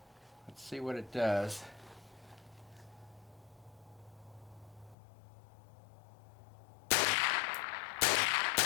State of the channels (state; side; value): drops out; right; at 5.0 s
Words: let's see what it does.